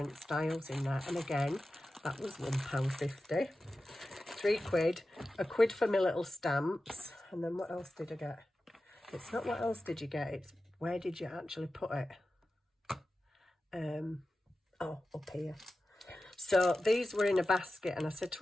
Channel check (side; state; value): both; normal; correlation 0.93